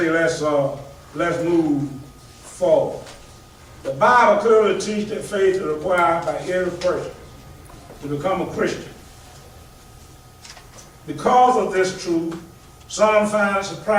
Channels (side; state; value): both; identical; correlation 1.00